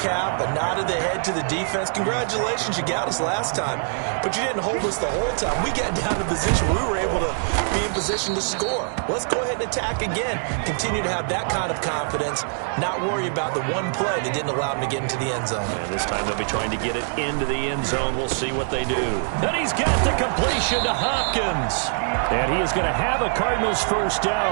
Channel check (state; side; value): silent; left; digital silence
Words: a nod of the head to the defense. Congratulations, you got us last time. But you didn't hold us the whole time. We got down to position where we were able to be in position to score. Let's go ahead and attack again. Continue to have that kind of confidence, not worry about the one play that didn't allow them to get into the end zone. And this time they'll be trying to get it into the end zone. We'll see what they do. And he's got the completion to Hopkins. And he is going to have a Cardinals first